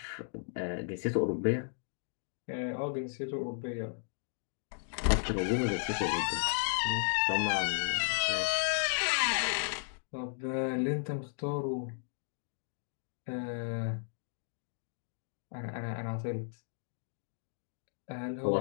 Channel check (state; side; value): silent; right; digital silence